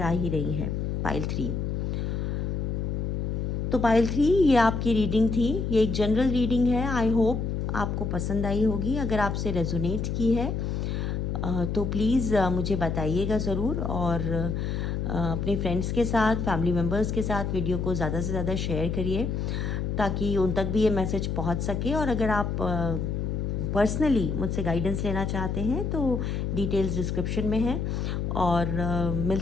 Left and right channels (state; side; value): noise; left; hum, 1 dB below the sound